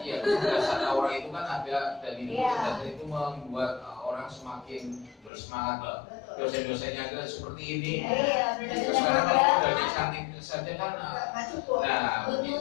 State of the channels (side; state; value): right; drops out; at 5.3 s